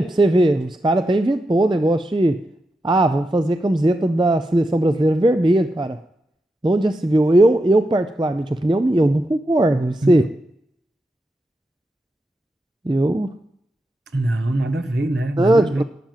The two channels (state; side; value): normal; both; correlation 0.87